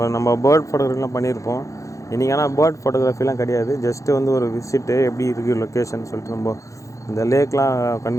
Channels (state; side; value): late; right; 0.15 ms